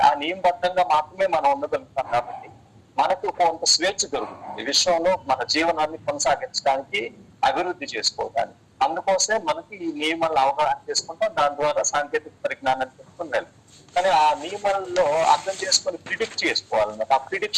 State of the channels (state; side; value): identical; both; correlation 1.00